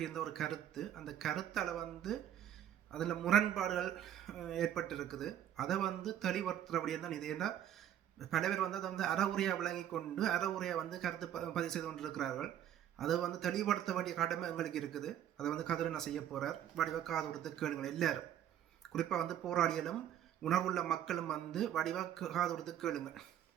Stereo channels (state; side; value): quieter; left; 10.8 dB